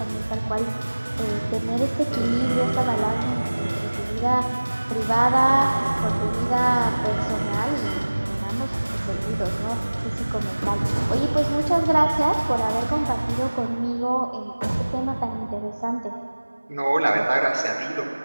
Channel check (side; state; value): both; inverted; correlation -1.00